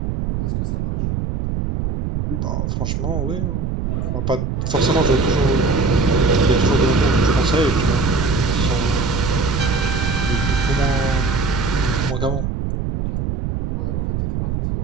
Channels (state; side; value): noise; right; rumble, 1 dB below the sound